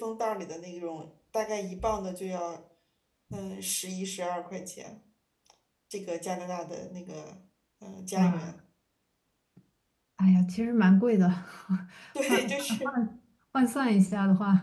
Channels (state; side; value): identical; both; correlation 1.00